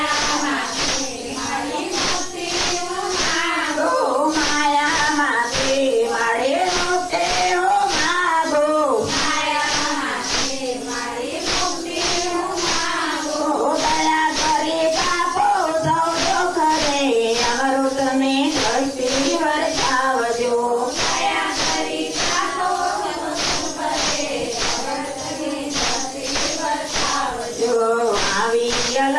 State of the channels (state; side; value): identical; both; correlation 1.00